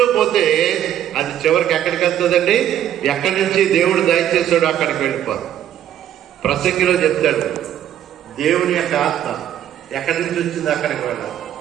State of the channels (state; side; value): quieter; left; 11.1 dB